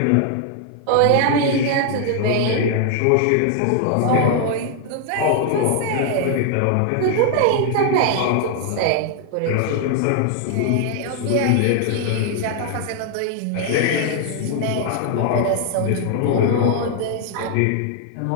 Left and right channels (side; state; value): both; different; correlation 0.00